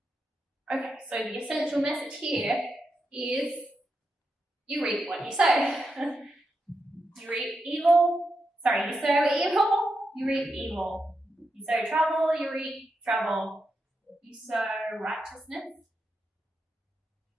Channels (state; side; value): normal; both; correlation 0.86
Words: Okay, so the essential message here is you reap what you sow. You sow evil, you reap evil. You sow trouble, you reap trouble. You sow righteousness,